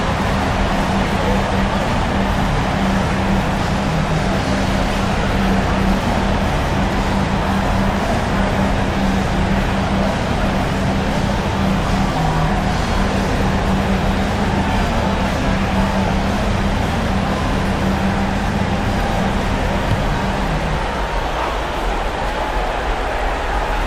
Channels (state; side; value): identical; both; correlation 1.00